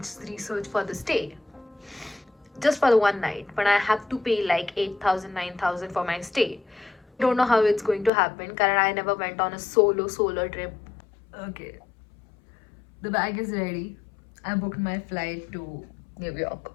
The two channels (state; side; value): drops out; right; at 8.1 s